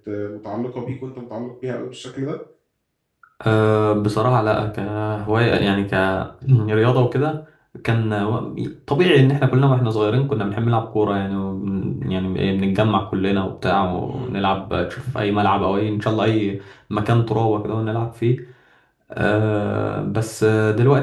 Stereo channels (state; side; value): identical; both; correlation 1.00